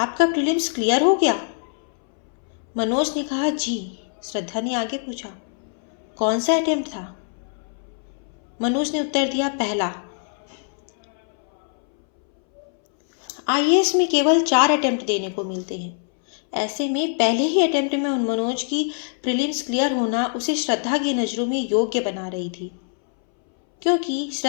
प्रीलिम्स क्लियर हो गया? मनोज ने कहा, जी। श्रद्धा ने आगे पूछा, कौन सा अटेम्प्ट था? मनोज ने उत्तर दिया, पहला। आईएएस में केवल 4 अटेम्प्ट देने को मिलते हैं। ऐसे में पहले ही अटेम्प्ट में मनोज की प्रीलिम्स क्लियर होना उसे श्रद्धा की नज़रों में योग्य बना रही थी, क्योंकि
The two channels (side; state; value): right; silent; 62 dB below the other